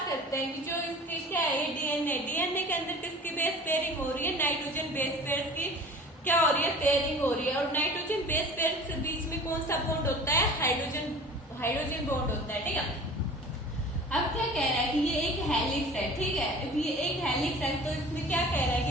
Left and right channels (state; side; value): normal; both; correlation 0.42